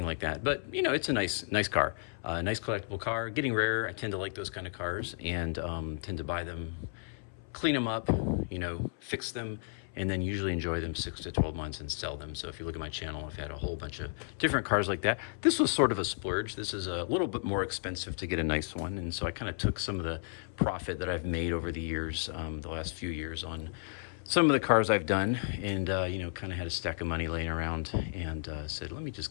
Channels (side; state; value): right; silent; 56 dB below the other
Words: like that. But, it's a nice car, a nice collectible car. Getting rare. I tend to like those kind of cars and tend to buy them, clean them up, fix them, and then usually enjoy them 6 to 12 months and sell them. So if you look at my channel, I've had a whole bunch of different cars like that. This was sort of a splurge. This is a little bit more expensive to get a nice one. And so I kind of took some of the profit that I've made over the years, the last few years on some of the cars I've done, and kind of had a stack of money laying around and said, let me just